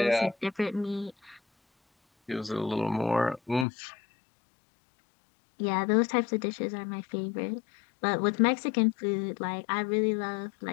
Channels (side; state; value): right; drops out; at 3.7 s